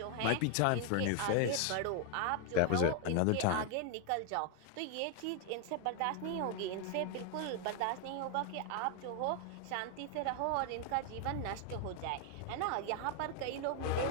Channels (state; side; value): different; both; correlation 0.00